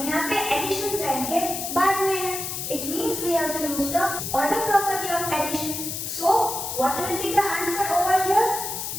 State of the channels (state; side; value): noise; left; hiss, 5 dB below the sound